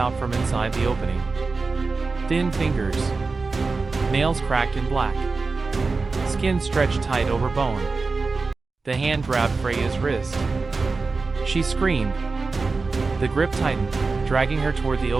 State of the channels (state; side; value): quieter; left; 4.1 dB